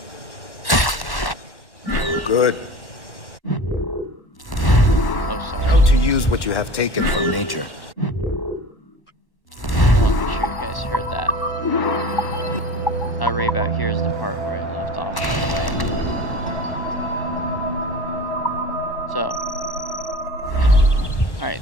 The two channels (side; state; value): right; late; 1.1 ms